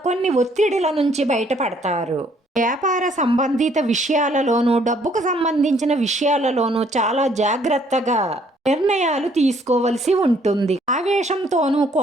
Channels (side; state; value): both; normal; correlation 0.64